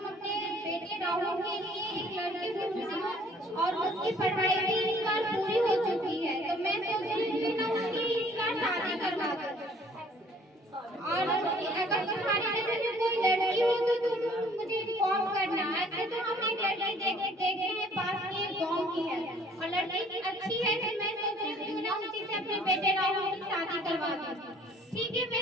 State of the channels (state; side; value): normal; both; correlation 0.57